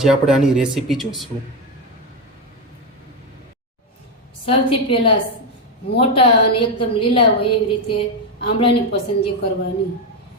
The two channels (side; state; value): both; normal; correlation 0.09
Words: આપણે આની રેસીપી જોઈશું. સૌથી પહેલાં મોટા અને એકદમ લીલા હોય એવી રીતે આમળાની પસંદગી કરવાની.